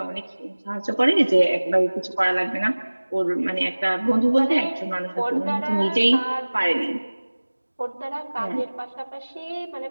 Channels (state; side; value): inverted; both; correlation -1.00